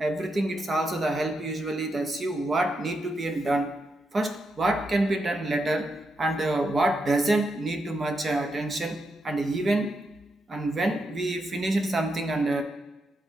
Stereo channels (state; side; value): normal; both; correlation 0.83